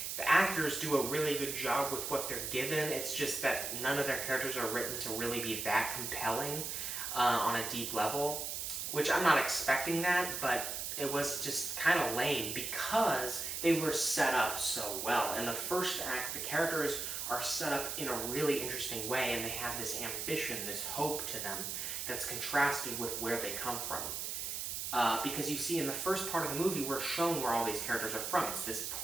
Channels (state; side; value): noise; right; hiss, 3 dB below the sound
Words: The actors do a really good job with what they're given. It's just that none of their characters are written to really be that compelling on a deep level, which I'm not expecting that, but it was just kind of lame because they were set up so well. In the first act, the characters are set up in a really interesting way, and they have this ambition, this hope to them that's contrasted with where they come from. Because you see, in the first part of the movie, we're shown where all these characters are from. It's this